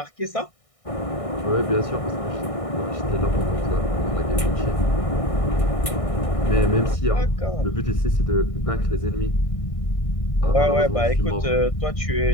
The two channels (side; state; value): right; late; 1.6 ms